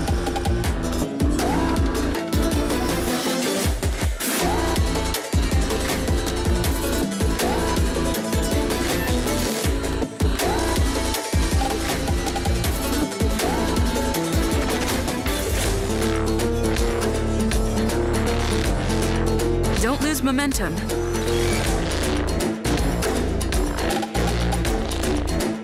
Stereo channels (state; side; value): identical; both; correlation 1.00